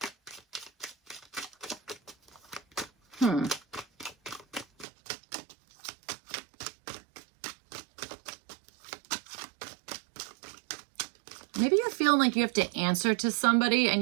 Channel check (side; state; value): left; drops out; at 4.9 s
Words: Maybe you're feeling like you have to answer to somebody, and